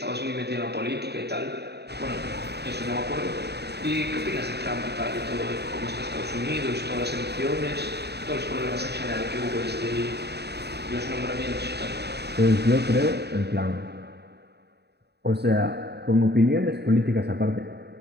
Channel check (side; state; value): left; late; 0.48 ms